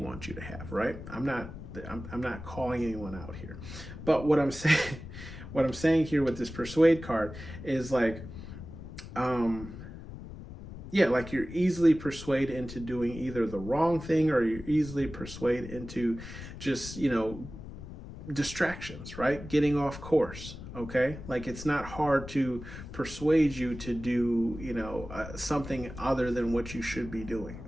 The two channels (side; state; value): left; noise; rumble, 12 dB below the sound